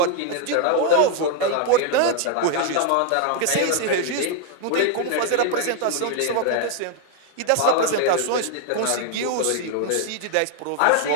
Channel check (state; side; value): different; both; correlation 0.00